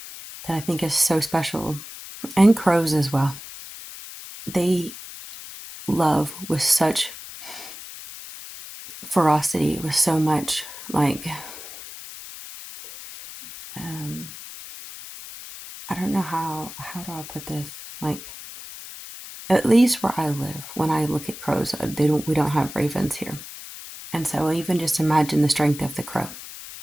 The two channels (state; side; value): noise; left; hiss, 13 dB below the sound